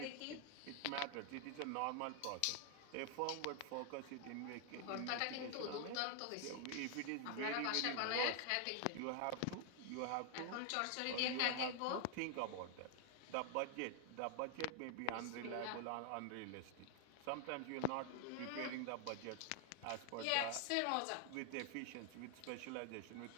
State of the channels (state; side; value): different; both; correlation 0.00